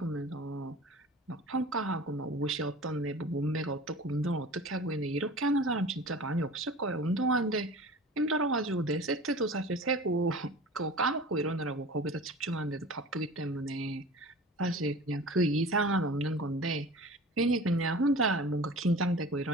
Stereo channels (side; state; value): both; normal; correlation 0.39